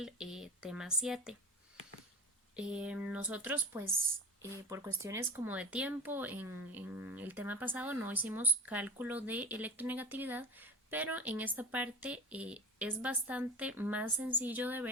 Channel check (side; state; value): both; normal; correlation 0.33